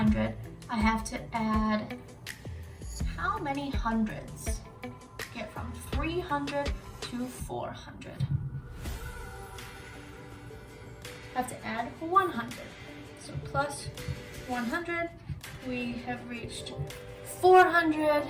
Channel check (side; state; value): both; identical; correlation 1.00